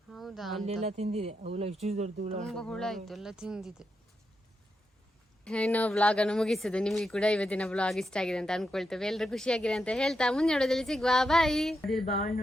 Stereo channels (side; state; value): both; normal; correlation 0.85